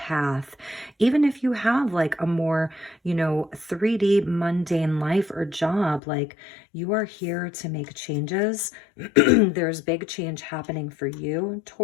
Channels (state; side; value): drops out; right; at 6.0 s